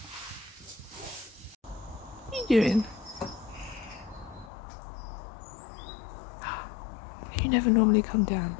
What are you doing? You never normally come down.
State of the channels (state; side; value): drops out; right; at 4.5 s